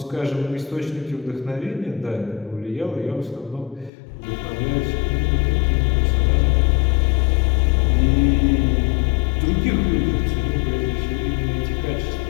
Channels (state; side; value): drops out; right; at 3.9 s